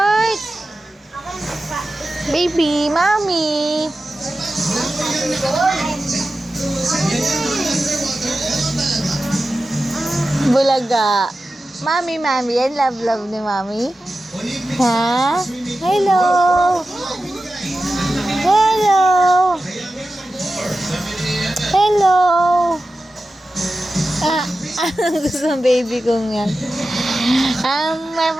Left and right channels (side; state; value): both; normal; correlation 0.93